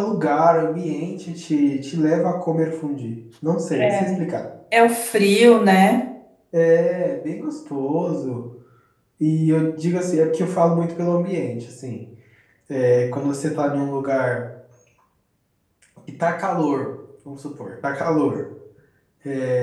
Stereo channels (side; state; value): both; identical; correlation 1.00